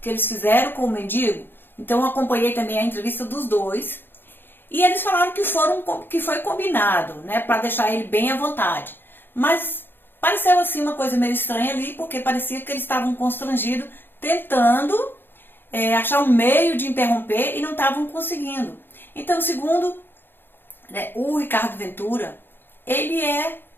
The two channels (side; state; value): right; late; 0.10 ms